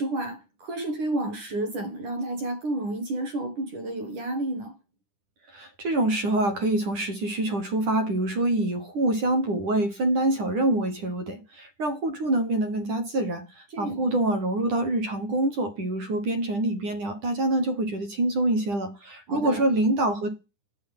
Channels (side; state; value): left; late; 10 ms